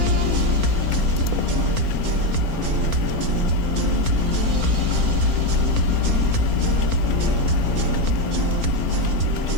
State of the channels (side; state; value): left; late; 4.3 ms